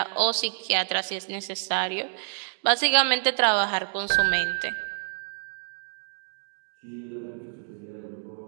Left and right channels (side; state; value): left; silent; digital silence